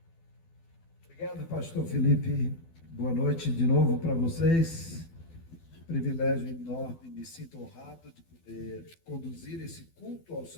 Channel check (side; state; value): right; late; 12 ms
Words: Obrigado, pastor Felipe. Boa noite de novo para vocês. Privilégio enorme, me sinto honrado de poder conduzir esse culto ao